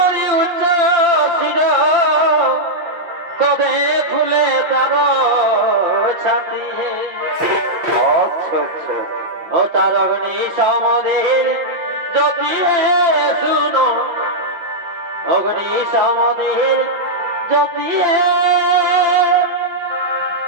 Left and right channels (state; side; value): late; left; 5.8 ms